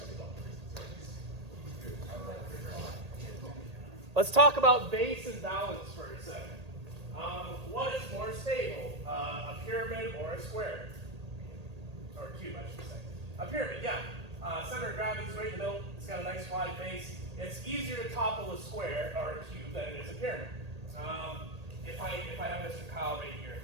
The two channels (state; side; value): late; left; 1.8 ms